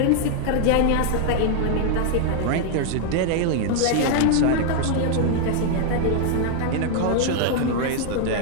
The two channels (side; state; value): both; different; correlation 0.00